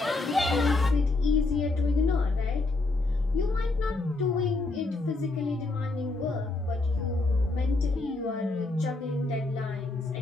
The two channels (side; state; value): right; quieter; 3.3 dB